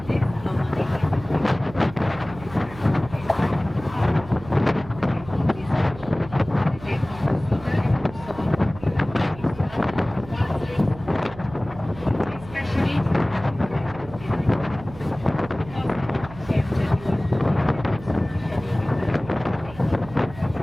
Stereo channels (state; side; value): noise; right; hum, 16 dB below the sound